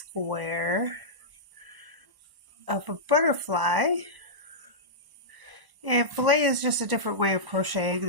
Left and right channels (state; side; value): late; left; 1.0 ms